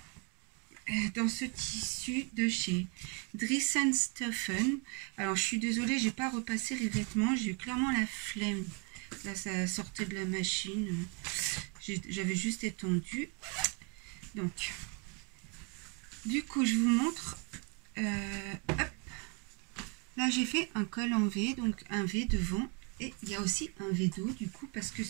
dans ce tissu de chez Dries & Stephen. Alors je suis désolée, j'ai pas repassé les vêtements, j'ai eu clairement la flemme. Là ça sortait de la machine. J'avais juste étendu. Donc, du coup, je vous montre. Hop. Là, j'ai fait un col en V, donc un V devant. Et il y a aussi un V dos, du coup, parce que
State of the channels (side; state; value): left; quieter; 34.2 dB